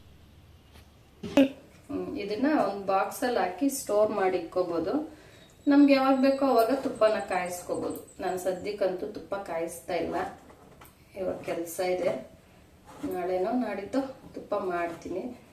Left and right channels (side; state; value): both; identical; correlation 1.00